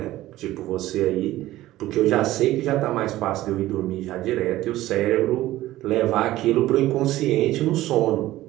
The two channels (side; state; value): left; quieter; 15.7 dB